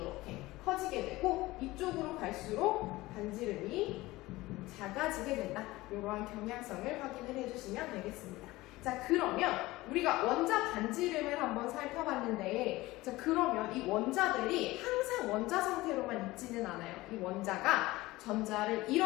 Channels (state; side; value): quieter; right; 19.2 dB